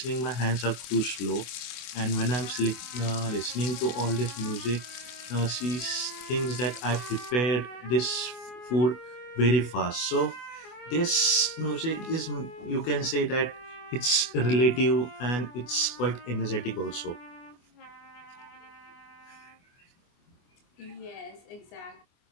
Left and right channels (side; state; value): right; late; 24 ms